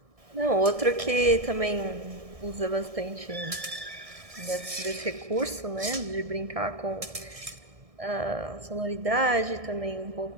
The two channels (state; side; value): late; left; 1.6 ms